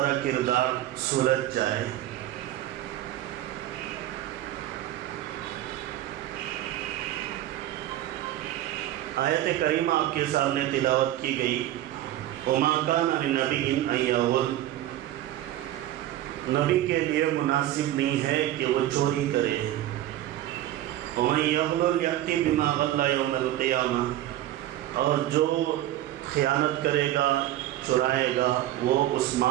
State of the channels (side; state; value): left; quieter; 13.8 dB